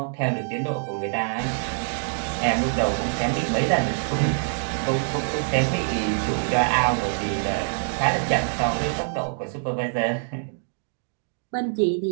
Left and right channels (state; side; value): silent; left; digital silence